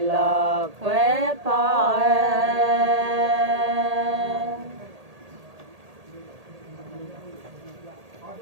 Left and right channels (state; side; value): late; left; 1.8 ms